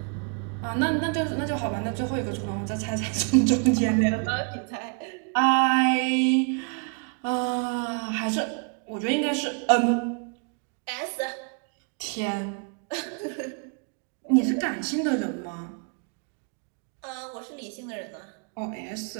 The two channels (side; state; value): left; quieter; 38.9 dB